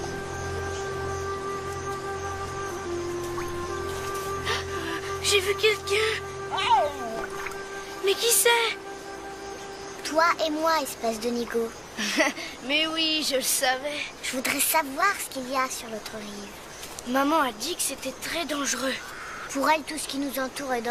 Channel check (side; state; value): both; identical; correlation 1.00